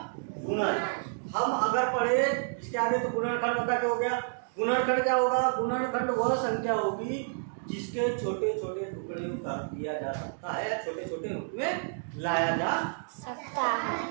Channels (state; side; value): silent; left; digital silence